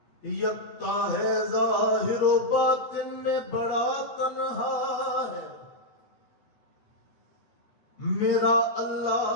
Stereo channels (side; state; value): right; late; 8.2 ms